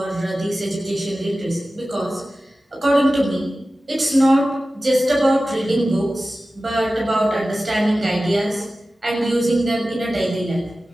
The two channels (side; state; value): both; normal; correlation 0.95